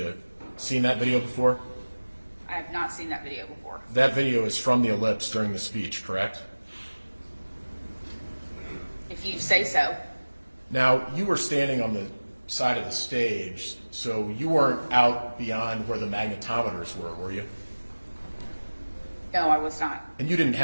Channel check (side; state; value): both; inverted; correlation -1.00